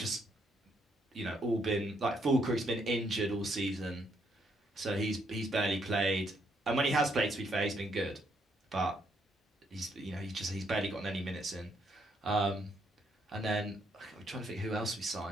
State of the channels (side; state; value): both; normal; correlation 0.73